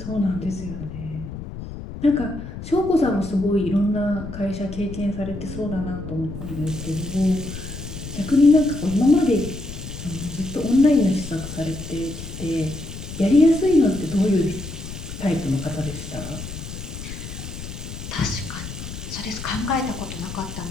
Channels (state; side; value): noise; left; rumble, 10 dB below the sound